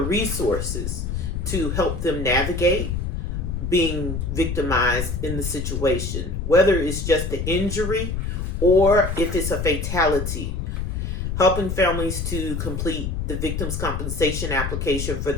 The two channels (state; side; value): noise; left; rumble, 3 dB below the sound